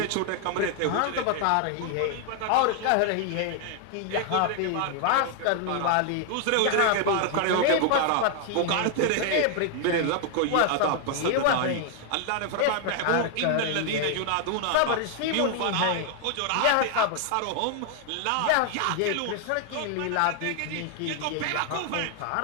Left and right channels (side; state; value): both; different; correlation 0.00